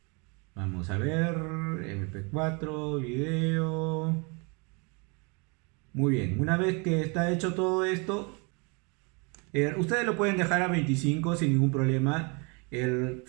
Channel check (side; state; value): left; quieter; 31.9 dB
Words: Vamos a ver, MP4, video. Muy bien, una vez que está hecho todo esto, ustedes lo pueden dejar a 25 sin ningún problema.